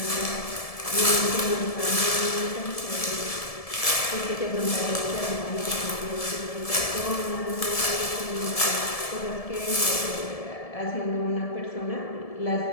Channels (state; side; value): late; right; 1.7 ms